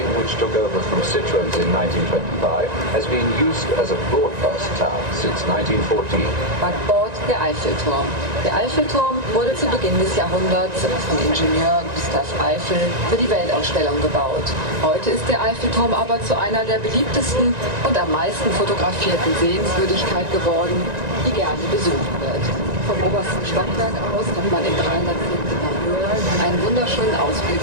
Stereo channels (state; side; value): late; left; 1.9 ms